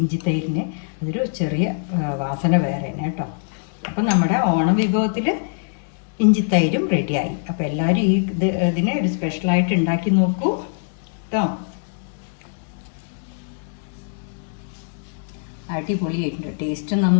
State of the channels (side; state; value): right; silent; digital silence